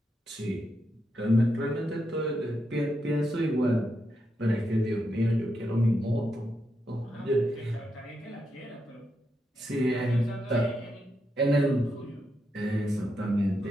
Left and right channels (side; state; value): both; normal; correlation 0.83